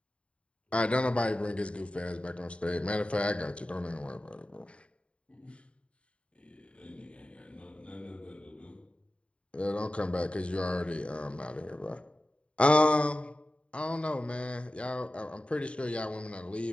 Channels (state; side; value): late; right; 0.060 ms